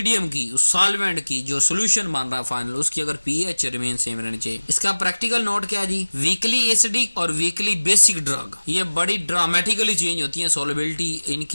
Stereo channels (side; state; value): both; inverted; correlation -1.00